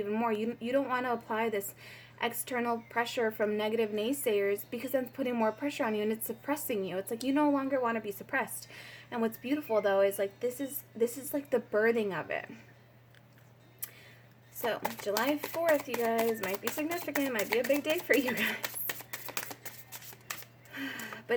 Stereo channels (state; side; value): identical; both; correlation 1.00